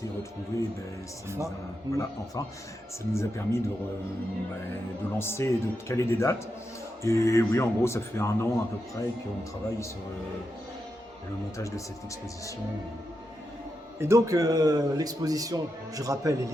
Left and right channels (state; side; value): normal; both; correlation 0.86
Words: retrouvées, ça nous a permis de lancer et de caler des dates. Et oui, en gros, ça fait 1 an à peu près qu'on travaille sur le montage de cette exposition. Et donc l'exposition, je rappelle,